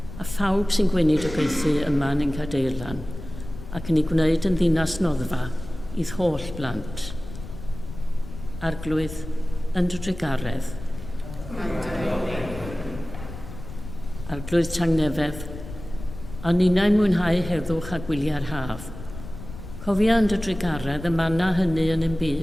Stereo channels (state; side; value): noise; left; rumble, 12 dB below the sound